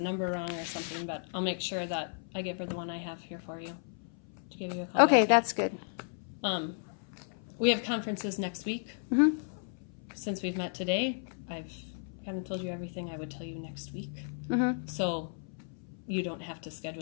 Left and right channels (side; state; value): right; silent; 55 dB below the other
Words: wrong or something, but I'll make sure that I give her the one I have here for you to give you a call. Okay, that's good. We have conferences next week. Mm-hmm. Since we've met today, I've kind of told you everything I would tell you next week. Mm-hmm. So you don't have to